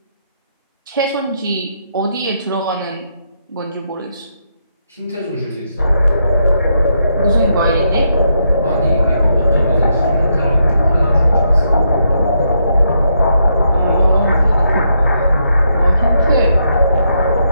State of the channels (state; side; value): inverted; both; correlation -0.78